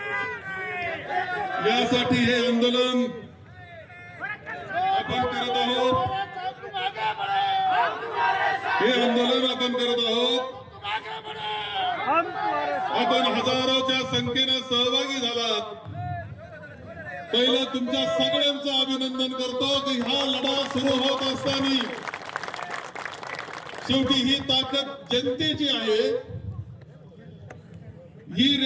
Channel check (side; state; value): both; identical; correlation 1.00